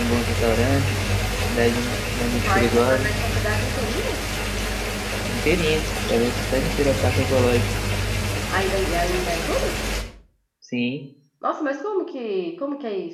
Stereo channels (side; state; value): both; identical; correlation 1.00